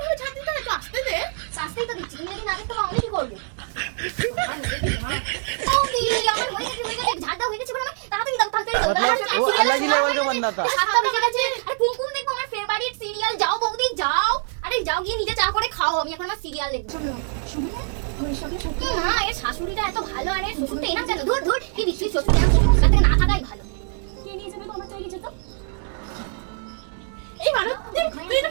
ভাবে ঝাড় দিতে হয় তো, আসতে দে। শাস্তিই তো দিচ্ছি, তুমি যদি না দেখতে পাও আমি কি করবো? আমার হয়ে গেছে, ঝাড় দাও হয়ে গেছে বলে তাড়াতাড়ি দাও, তাড়াতাড়ি দাও। वो अलग ही लेवल का बंदा था। সাতটা বেজে গেছে, আরে কুমকুম দেখবো আমার ফেভারিট সিরিয়াল। যাও বৌদি যাও, আরে যাও গিয়ে নিজে চা করে খাও, আমি এখন আমার সিরিয়াল দেখবো। মা এর শাশুড়িটা এত ভালো, আরে শ্বশুরটা এরকম কেন? ধর ধর কি দিচ্ছিস, শ্বশুর এরকম থাকা থেকে না থাকাই ভালো। কে নিয়ে যাবে তোমার তৈরি যেত? এই মালতী, তুই এটা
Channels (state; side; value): silent; left; 63 dB below the other